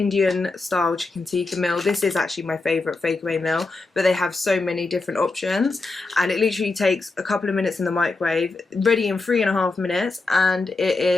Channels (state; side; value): quieter; right; 3.5 dB